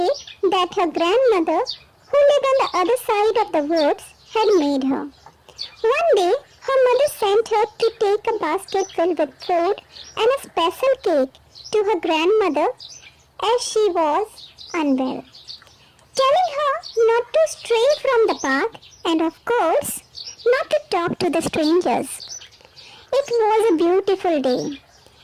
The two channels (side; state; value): both; identical; correlation 1.00